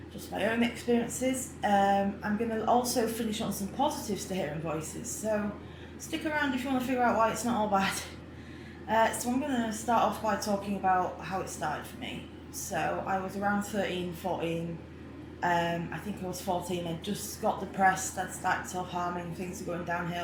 just my own experiences. I'm going to also finish on some positives to hearing voices, so stick around if you want to figure out why it's not all bad. So I'm going to start off by talking about how it started for me. So I was around 13, 14. I think I was 14. I just got depressed. I'd started self-harming. Things were going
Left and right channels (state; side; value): identical; both; correlation 1.00